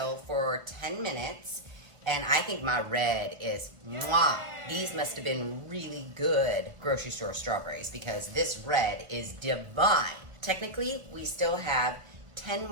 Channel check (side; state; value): left; late; 1.5 ms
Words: for 10 minutes, and I think my red is mwah. These must have been really good grocery store strawberries because this red is divine. Technically, we still have 10